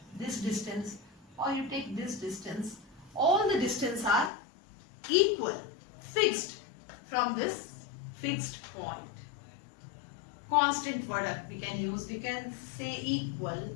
this distance, or you take this distance, all the distance are equal, fixed from this fixed point. Constant product we can use, we can say equal.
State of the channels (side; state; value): right; drops out; at 4.3 s